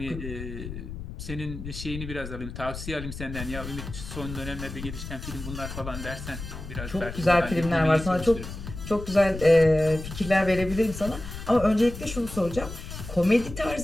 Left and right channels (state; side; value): noise; left; rumble, 9 dB below the sound